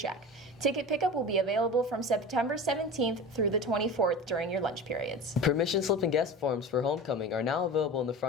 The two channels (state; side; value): normal; both; correlation 0.32